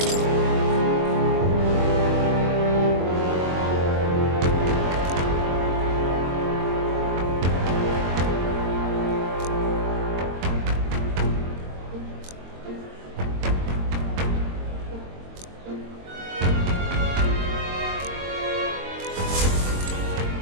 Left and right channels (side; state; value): left; late; 22 ms